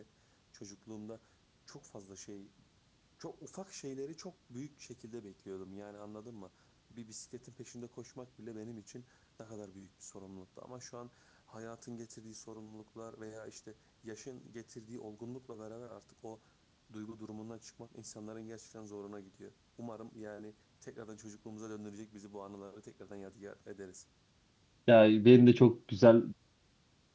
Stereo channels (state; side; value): identical; both; correlation 1.00